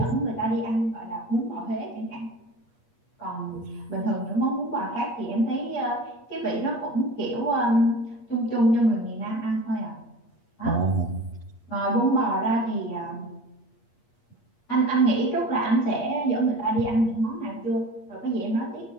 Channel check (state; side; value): late; right; 8.4 ms